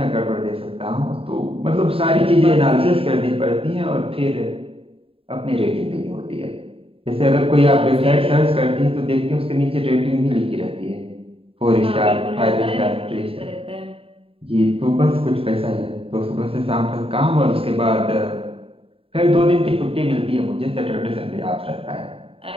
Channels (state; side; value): late; left; 0.27 ms